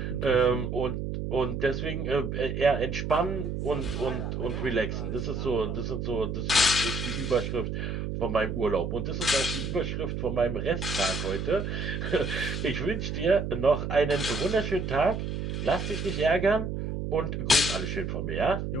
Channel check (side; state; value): right; noise; hum, 3 dB below the sound